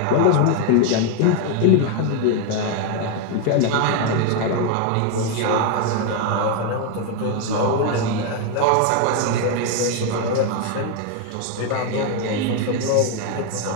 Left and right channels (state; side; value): different; both; correlation 0.01